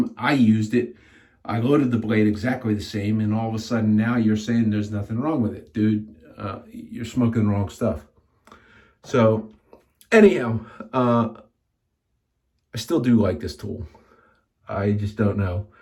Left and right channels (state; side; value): identical; both; correlation 1.00